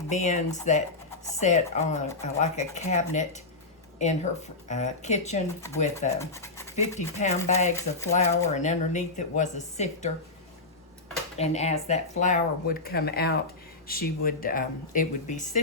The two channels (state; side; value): quieter; right; 3.4 dB